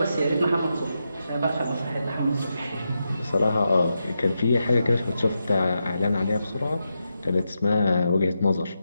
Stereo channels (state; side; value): inverted; both; correlation -0.86